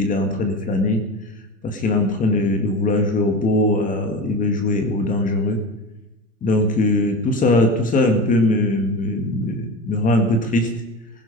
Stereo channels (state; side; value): normal; both; correlation 0.28